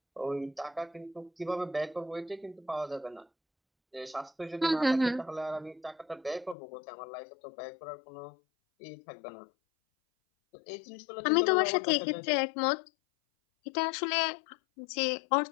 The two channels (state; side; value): drops out; right; at 6.6 s